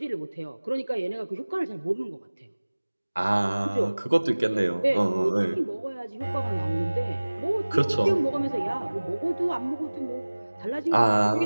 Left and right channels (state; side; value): inverted; both; correlation -1.00